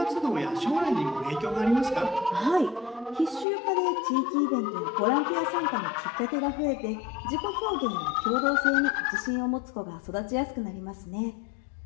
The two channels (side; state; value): right; drops out; at 3.5 s